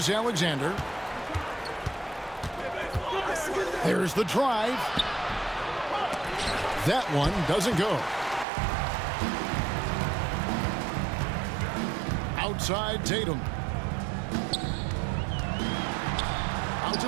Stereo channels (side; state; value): left; drops out; at 8.5 s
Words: There's the drive. That one doesn't go. Outside Tatum. Out to